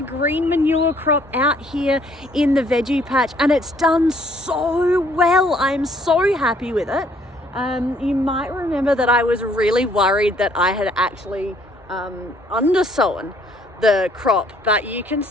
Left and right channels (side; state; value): both; normal; correlation 0.63